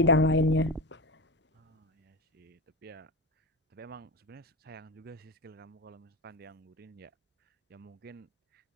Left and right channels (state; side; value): normal; both; correlation 0.22